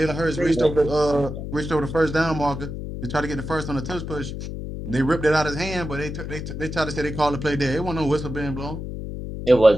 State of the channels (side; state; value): left; noise; hum, 7 dB below the sound